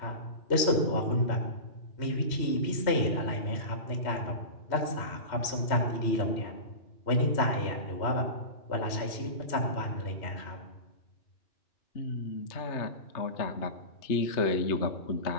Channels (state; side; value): late; right; 3.1 ms